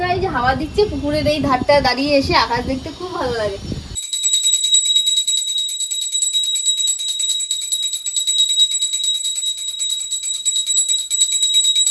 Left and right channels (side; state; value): both; identical; correlation 1.00